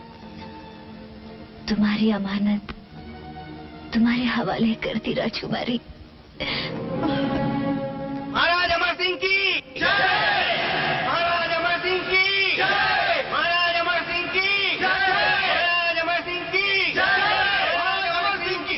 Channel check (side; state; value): both; identical; correlation 1.00